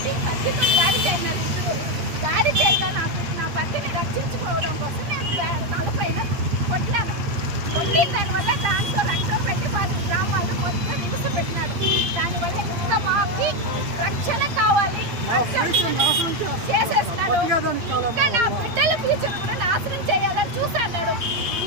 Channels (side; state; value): left; late; 8.6 ms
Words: కత్తితో దాడి చేయన్నారు. దాడి చేయగా నాకు నా భర్తని రక్షించుకోవడం కోసం నేను తలపైన కొట్టినాను. కొట్టిన దానివల్ల దాంతో రక్తం పెట్టి వాళ్ళ గ్రామాల్లో మొత్తం హింస పెట్టినాడు. దానివల్ల ఇంకా మాకి రక్షణ కావాలి చేసేస్తున్నాడు. ఇంకా నా బిడ్డల ఫ్యూచర్ కూడా నాశనం చేయాలని చూస్తున్నాడు.